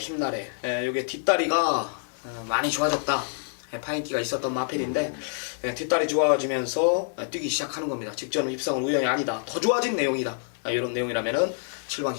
요게 뒷다리가 많이 좋아졌다. 파인기가 있었던 마필인데 뒷다리 좋아지면서 뛰기 시작하는 겁니다. 직전 입성은 우연이 아니다. 더 좋아진 내용이다. 이런 내용이라면은 7번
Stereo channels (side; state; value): right; silent; 58 dB below the other